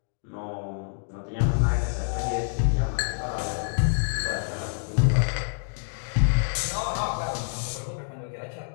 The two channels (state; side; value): silent; right; digital silence